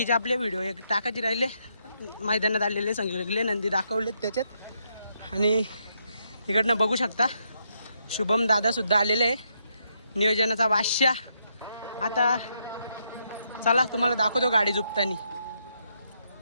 आपले व्हिडिओ एक टाकायचे राहिले. मैदानात आलेले सगळे नंदी दाखवलेत त्याच्यात. आणि इकडनं बघू शकता शुभम दादा सुद्धा आलेले आहे नियोजनाचा बादशाह. आता चला तुम्हाला दाखवतो गाडी झुपतानी.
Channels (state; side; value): inverted; both; correlation -0.78